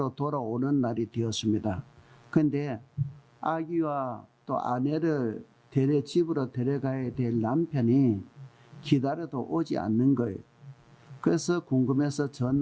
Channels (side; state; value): both; identical; correlation 1.00